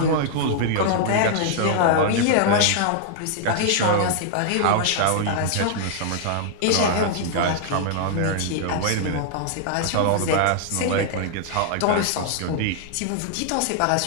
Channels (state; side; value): different; both; correlation -0.01